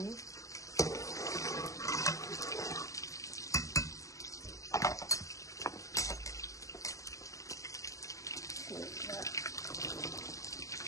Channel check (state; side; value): late; right; 0.16 ms